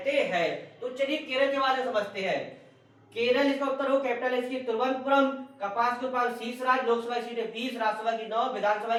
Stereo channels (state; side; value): identical; both; correlation 1.00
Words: हैं। तो चलिए केरल के बारे में समझते हैं। केरल इसका उत्तर हो, कैपिटल है इसकी तिरुवनंतपुरम। कपास के उत्पादन शीर्ष राज्य, लोकसभा सीटें 20, राज्यसभा की 9, विधानसभा